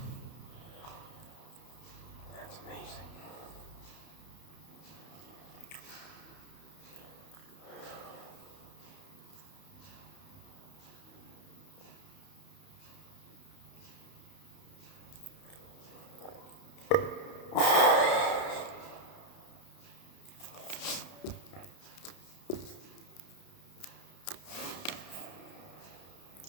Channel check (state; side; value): late; right; 31 ms